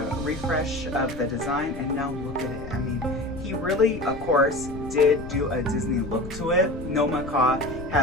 refresh of the design, and now look at it. I mean, he really, of course, did do a Disney look to it. No macaw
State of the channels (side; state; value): left; noise; rumble, 11 dB below the sound